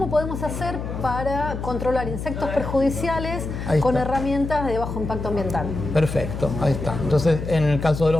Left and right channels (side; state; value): left; noise; hum, 6 dB below the sound